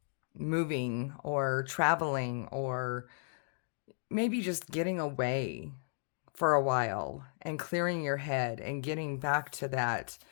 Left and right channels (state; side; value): silent; right; digital silence